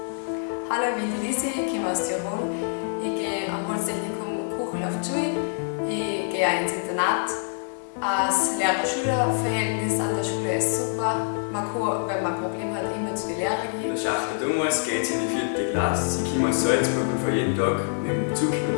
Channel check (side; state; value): right; silent; 61 dB below the other